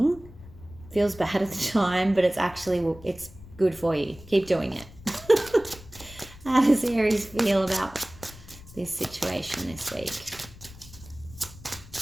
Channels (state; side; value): noise; left; rumble, 19 dB below the sound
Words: feels bad at the time, but it's actually, it's good for you. Keep doing it. How does Aries feel about this situation this week?